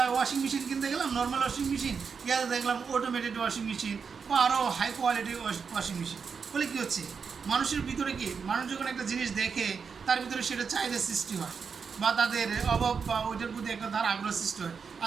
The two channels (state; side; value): quieter; left; 5.8 dB